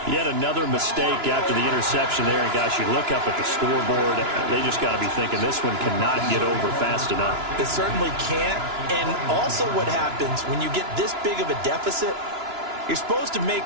Yet another mistake after the interception there. And, gosh, you look up at the scoreboard, they just got to be thinking this one cannot get over fast enough. It certainly can't. And also what happens when you get this big of a deficit, you're supposed to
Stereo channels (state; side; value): late; left; 2.9 ms